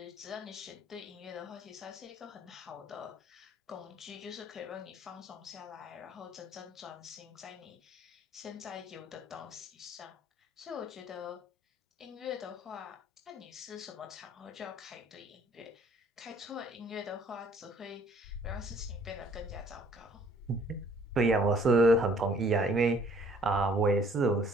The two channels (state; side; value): normal; both; correlation 0.58